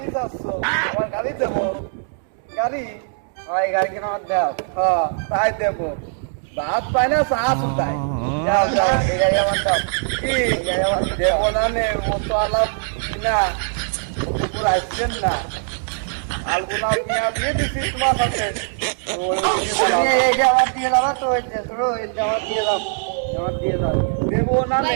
যাচ্ছ আমার গাড়ি দেবো গাড়ি এই গাড়িকে নামাজ দাও হ্যাঁ তাই দেবো ভাত পায় না চা শুধাই যাও যাও এই গাড়ি আমার দাও কি গাড়ি আমার দেবো না নে ও তো আলাপ না পুরো আসছেন না আলগুনা মিয়া বিয়ে দিছি তোমার সাথে এই জামাত দিয়ে দাও তো এই জামাত দিয়ে দাও জামাত দিয়ে দাও দেবো না নে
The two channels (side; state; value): left; silent; digital silence